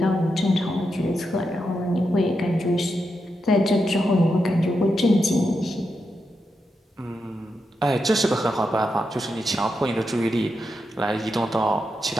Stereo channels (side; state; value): both; normal; correlation 0.85